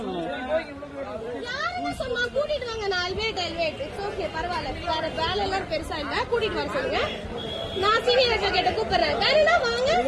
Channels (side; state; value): both; identical; correlation 1.00